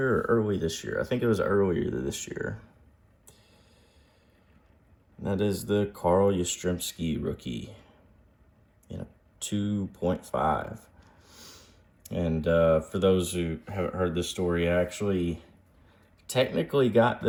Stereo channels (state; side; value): identical; both; correlation 1.00